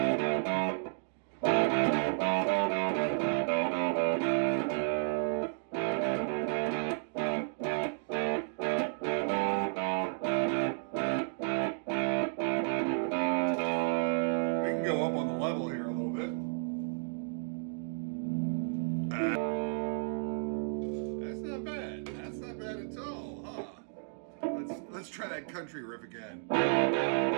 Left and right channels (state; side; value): silent; left; digital silence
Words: Let's try that country riff again.